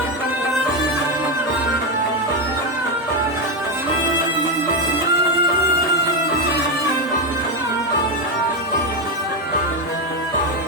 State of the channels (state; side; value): normal; both; correlation 0.09